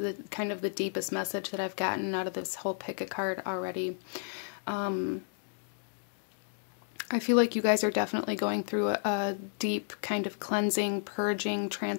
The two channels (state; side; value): silent; right; digital silence